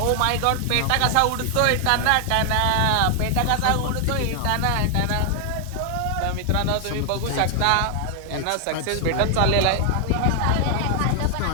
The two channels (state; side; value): different; both; correlation 0.00